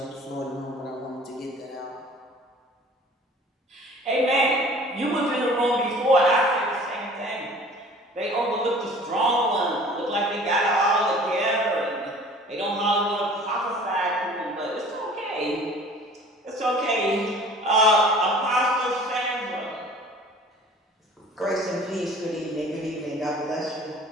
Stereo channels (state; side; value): normal; both; correlation 0.47